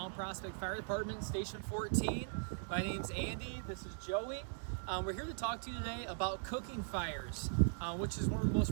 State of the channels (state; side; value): silent; left; digital silence